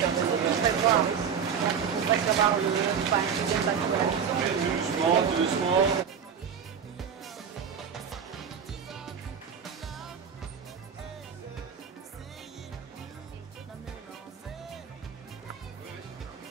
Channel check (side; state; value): left; quieter; 7.2 dB